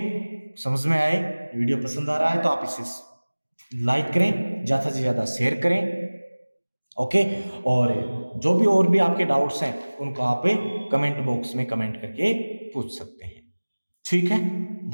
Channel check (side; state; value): both; inverted; correlation -1.00